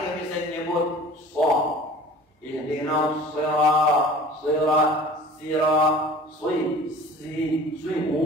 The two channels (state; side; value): normal; both; correlation 0.44